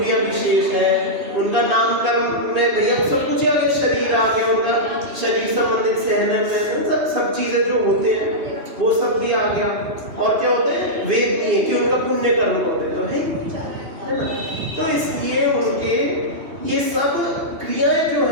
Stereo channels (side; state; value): left; late; 2.9 ms